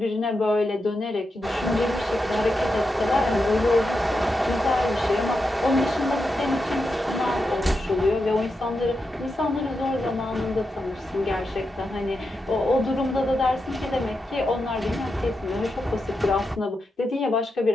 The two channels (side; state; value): both; normal; correlation 0.87